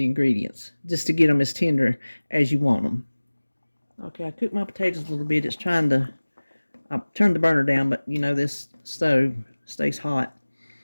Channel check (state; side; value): inverted; both; correlation -1.00